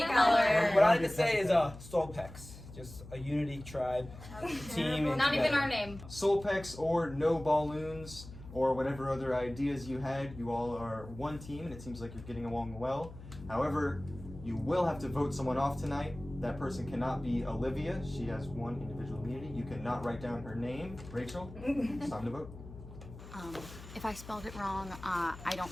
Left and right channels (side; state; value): left; noise; hum, 15 dB below the sound